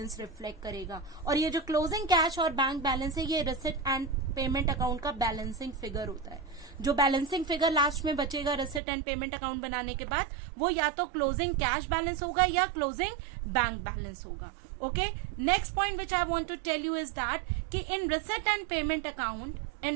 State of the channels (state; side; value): drops out; left; at 8.8 s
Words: रिफ्लेक्ट करेगा. और ये जो क्लोजिंग कैश और बैंक बैलेंस है, ये रिसिट एंड पेमेंट अकाउंट का बैलेंसिंग फिगर होता है. जो बैलेंसिंग फिगर लास्ट में बचेगा रिसिट एंड पेमेंट अकाउंट बनाने के बाद, वो या तो क्लोजिंग कैश बैलेंस होगा या क्लोजिंग बैंक बैलेंस होगा. Okay, next point which I want to tell you is that कि in receipt and payment